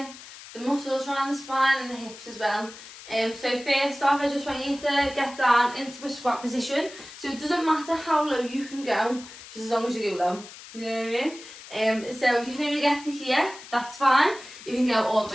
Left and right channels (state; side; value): noise; left; hiss, 16 dB below the sound